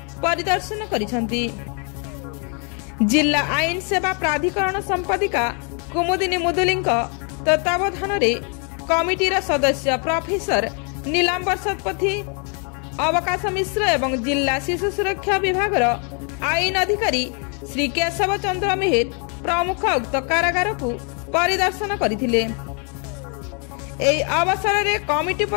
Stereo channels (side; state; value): right; quieter; 38.3 dB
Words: परिदर्शन करिसेंती। जिला आईन सेवा प्राधिकरण संपादिका कुमुदिनी मुदुली तत्वावधान कमिटीर सदस्य प्रोफेसर नीलांबर शतपथी, अवकाश मिश्र एवं जिला शिशु सुरक्षा विभाग आईन अधिकारी श्री केशव चंद्र मेहर प्रमुख उक्त कारागार को परिदर्शन करथिले। एई अवसर में कमिटी